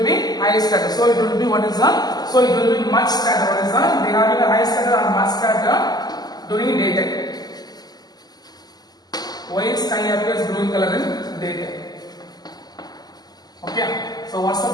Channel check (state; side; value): late; right; 0.20 ms